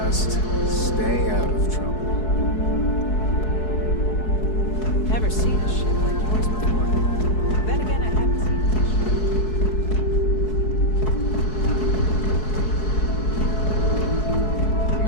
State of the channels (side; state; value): right; late; 4.7 ms